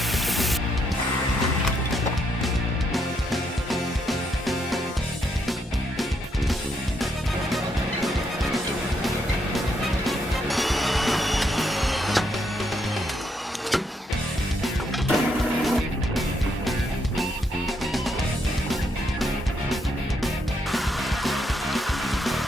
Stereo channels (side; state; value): both; normal; correlation 0.76